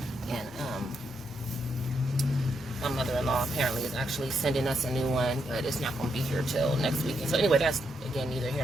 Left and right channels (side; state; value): both; normal; correlation 0.80